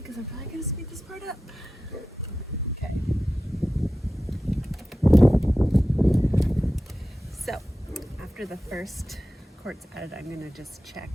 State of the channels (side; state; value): both; normal; correlation 0.93